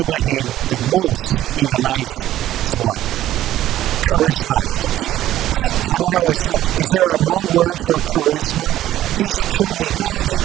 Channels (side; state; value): left; quieter; 13.4 dB